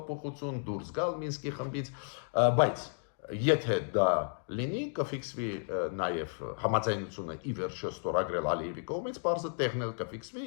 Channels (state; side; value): silent; right; digital silence